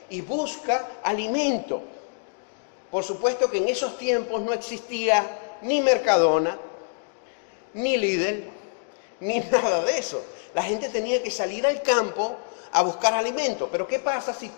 y busca alimento. Por supuesto que en esos tiempos no existía ni Mercadona, ni Lidl, ni nada de eso. La gente tenía que salir al campo a buscar alimento. Pero ¿qué pasa si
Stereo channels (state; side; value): silent; right; digital silence